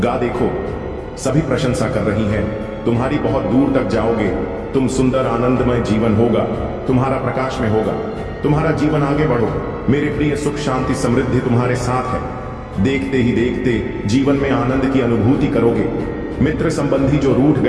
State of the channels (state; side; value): identical; both; correlation 1.00